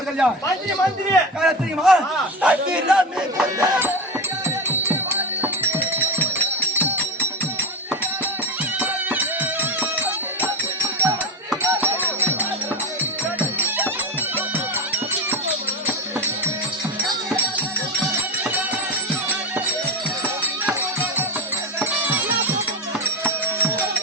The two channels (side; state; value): both; normal; correlation 0.21